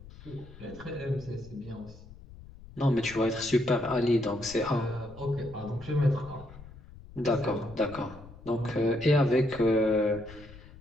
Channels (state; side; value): noise; left; rumble, 18 dB below the sound